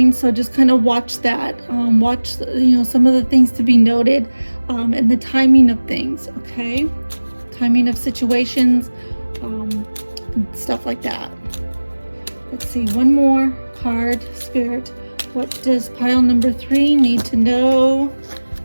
so just kind of watch that. Watch, some of the things to be noted, and the timing of things, okay? Timing of situations, and stuff like that. Let's see, one more card, Spirit. What does pile number 3 need to know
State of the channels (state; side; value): inverted; both; correlation -1.00